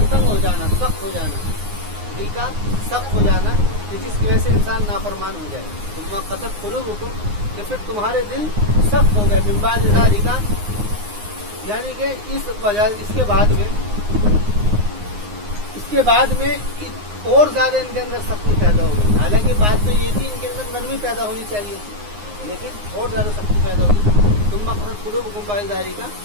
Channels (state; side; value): late; left; 9.6 ms